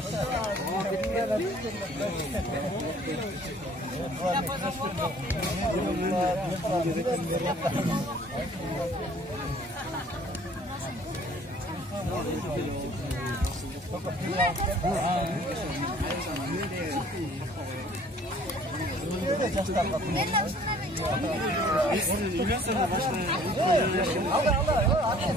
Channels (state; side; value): normal; both; correlation 0.54